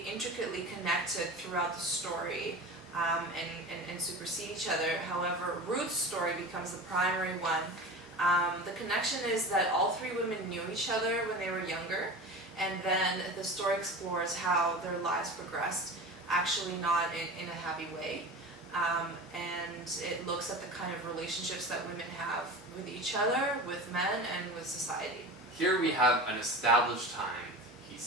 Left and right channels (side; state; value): both; normal; correlation 0.32